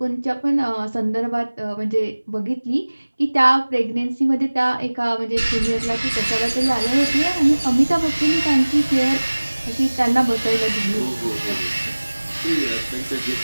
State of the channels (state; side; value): inverted; both; correlation -1.00